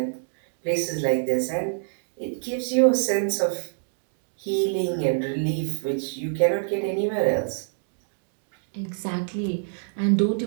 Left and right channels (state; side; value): silent; left; digital silence